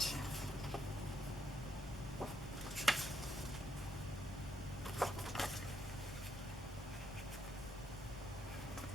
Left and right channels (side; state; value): both; normal; correlation 0.76